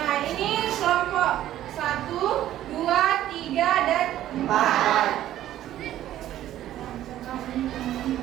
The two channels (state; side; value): quieter; left; 12.9 dB